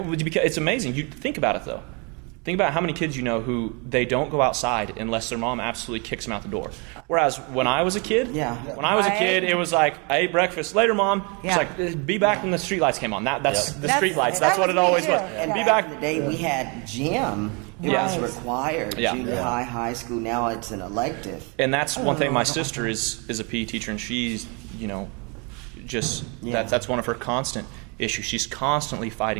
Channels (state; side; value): quieter; left; 32.4 dB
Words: amazing. You think about it though. Think about how many kids who they don't go outside unless their mom absolutely kicks them out the door. Whereas when I was a kid, it was like, I ate breakfast, later mom. It's like, be back when the street lights came on. That's the street lights. That's what it always was. And be back in the day we had gym. It was required. Junior high school. Now it's an elective. And that's one thing. My sister is a PE teacher, and she's that's one of her constant issues. She's constantly